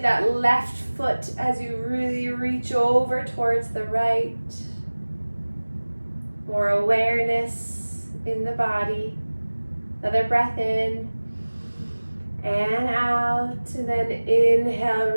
left foot as you really reach over towards the right. More awareness in the body. Another breath in and out, and then inhale,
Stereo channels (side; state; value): both; inverted; correlation -1.00